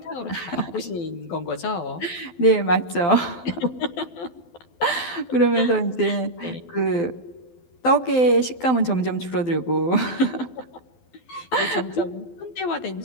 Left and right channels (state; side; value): late; right; 12 ms